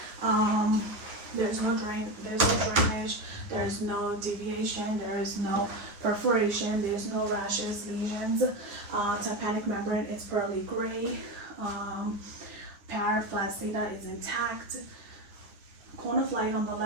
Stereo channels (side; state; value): left; late; 9.8 ms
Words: there's no drainage, there's no deviation, there is no perforation, there's no rashes, lesions. Tympanic membrane is pearly gray. Paraflacida is intact. Cone of light on the